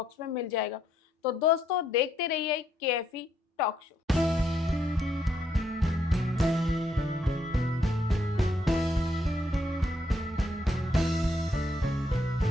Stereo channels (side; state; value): both; normal; correlation 0.74